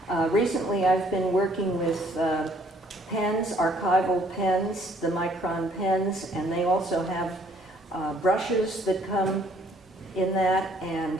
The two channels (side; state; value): both; normal; correlation 0.62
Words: Recently I've been working with pens, archival pens, the Micron pens, and they also have brushes that come in that, and